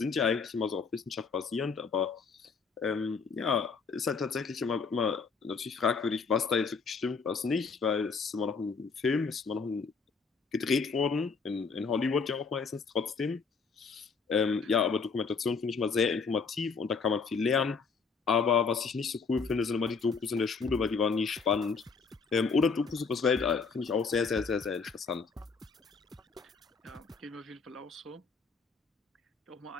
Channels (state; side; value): quieter; right; 5.1 dB